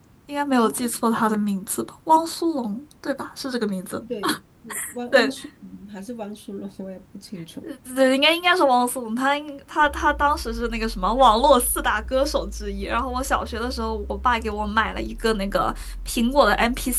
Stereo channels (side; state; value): both; identical; correlation 1.00